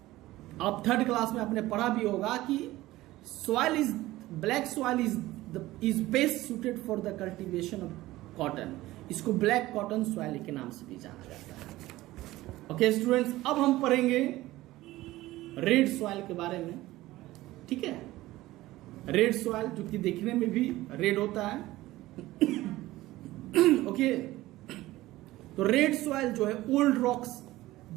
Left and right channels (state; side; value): quieter; left; 17.2 dB